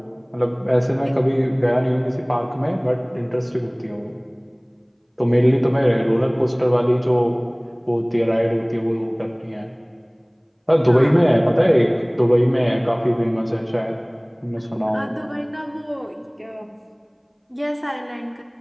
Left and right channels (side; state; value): both; identical; correlation 1.00